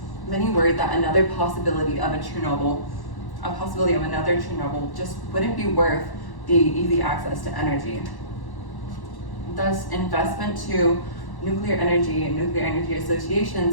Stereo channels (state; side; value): late; right; 1.1 ms